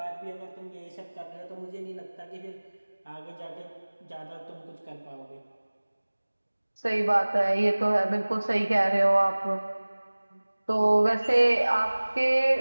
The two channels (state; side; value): inverted; both; correlation -1.00